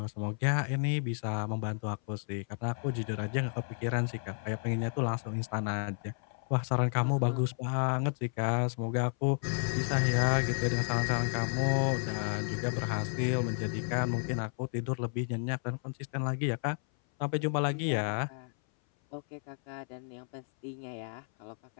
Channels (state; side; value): silent; right; 56 dB below the other